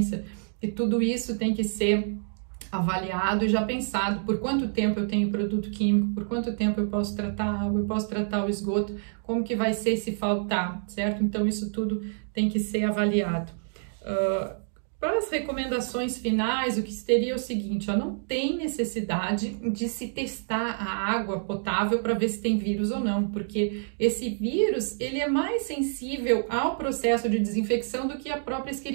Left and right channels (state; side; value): silent; left; digital silence